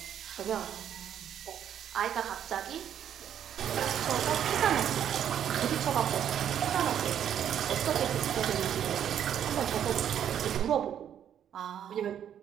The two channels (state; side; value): quieter; left; 9.6 dB